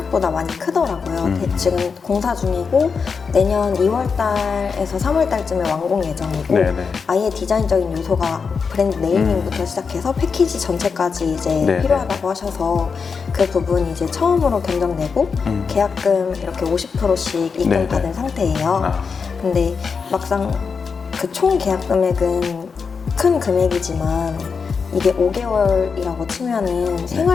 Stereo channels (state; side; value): quieter; right; 5.5 dB